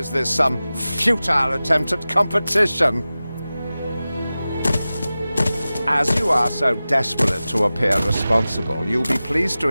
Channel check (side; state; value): both; inverted; correlation -0.96